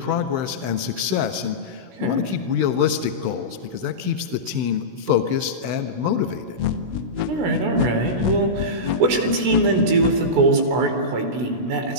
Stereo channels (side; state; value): left; late; 16 ms